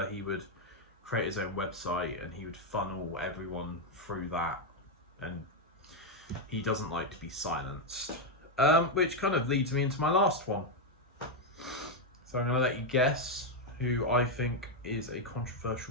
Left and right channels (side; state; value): both; normal; correlation 0.02